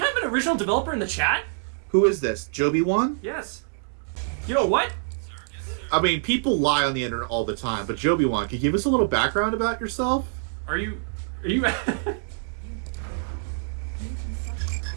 an original developer in the chat? Who is this? Joby1? Yes. You know what? I mean, people lie on the internet all the time, but Joby1, can you give us a little background about yourself? Are you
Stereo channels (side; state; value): left; silent; digital silence